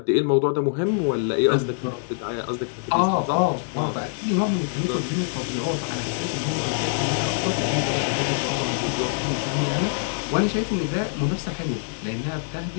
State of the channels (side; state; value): right; silent; 62 dB below the other